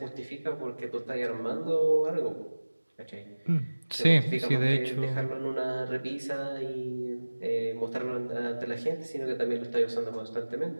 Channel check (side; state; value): both; inverted; correlation -1.00